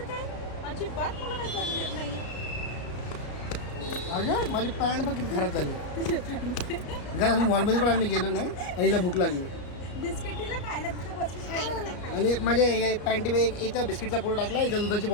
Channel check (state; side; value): late; right; 33 ms